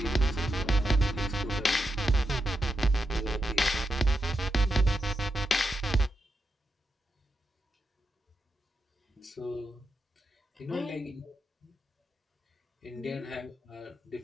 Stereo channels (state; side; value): normal; both; correlation 0.86